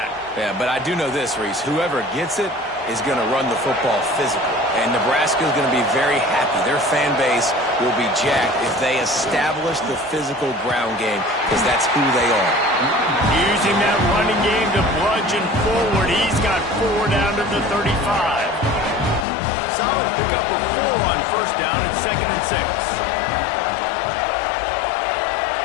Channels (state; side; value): drops out; right; at 19.2 s